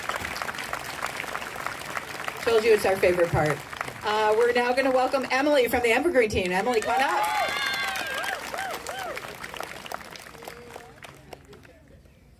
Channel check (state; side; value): identical; both; correlation 1.00